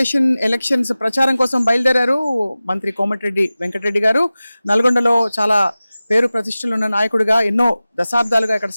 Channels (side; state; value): both; inverted; correlation -0.97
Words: elections ప్రచారం కోసం బయలుదేరారు మంత్రి కోమటిరెడ్డి వెంకటరెడ్డి గారు. నల్గొండలో చాలా పేరు ప్రతిష్టలు ఉన్న నాయకుడిగా ఎన్నో దశాబ్దాలుగా ఇక్కడ